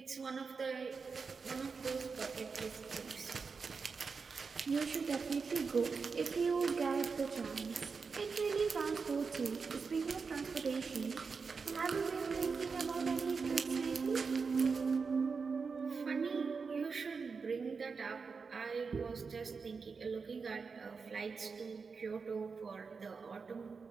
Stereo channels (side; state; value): left; quieter; 5.0 dB